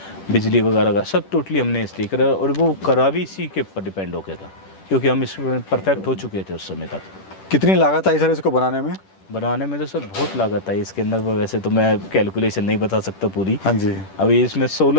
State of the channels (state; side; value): late; right; 10 ms